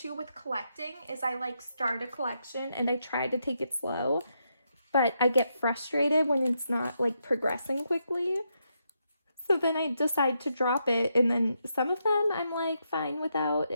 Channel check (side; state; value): both; inverted; correlation -0.81